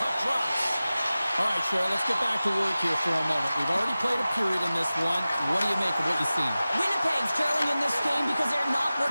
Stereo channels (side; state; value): both; inverted; correlation -0.96